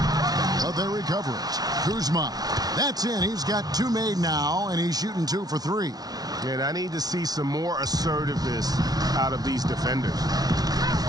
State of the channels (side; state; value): left; late; 0.19 ms